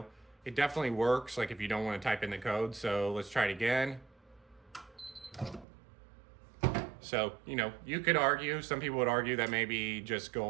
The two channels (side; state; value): left; drops out; at 5.7 s